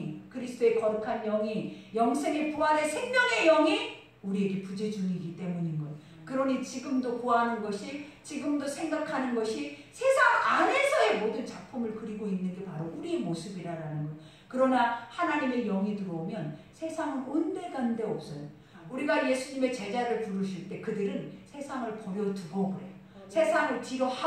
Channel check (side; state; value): both; identical; correlation 1.00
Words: 그리스도의 거룩한 영이 영생의 부활의 생명의 영이 우리에게 부재 중이기 때문인 거예요. 그러니 지금도 구하는 것이 지금도 생각하는 것이 세상 안에서의 모든 작품을 그리고 있는 게 바로 우리의 모습이라는 거예요. 그러나 하나님의 영이 들어오면 세상은 온데간데 없어요. 우리가 예수님의 제자를 부르실 때 그들은 세상을 버려두고 그래요. 세상을 뒤로